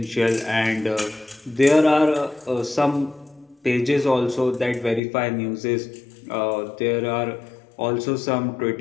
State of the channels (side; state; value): right; drops out; at 5.0 s